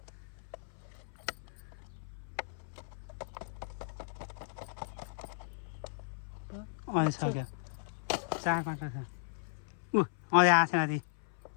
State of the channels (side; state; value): right; silent; 54 dB below the other